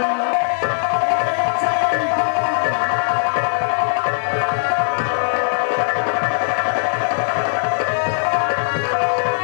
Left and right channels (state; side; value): silent; right; digital silence